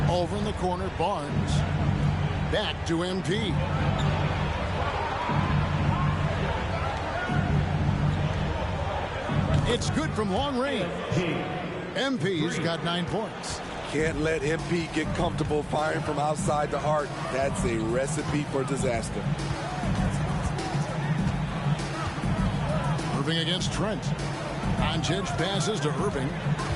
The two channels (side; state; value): both; identical; correlation 1.00